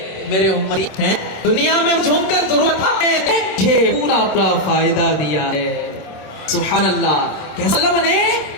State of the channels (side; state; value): right; late; 26 ms